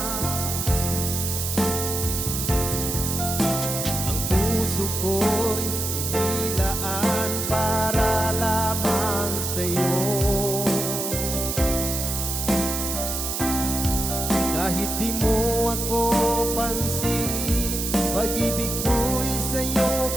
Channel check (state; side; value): noise; right; hiss, 3 dB below the sound